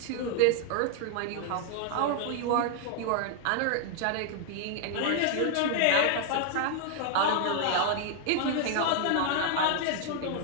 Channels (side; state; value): both; different; correlation 0.00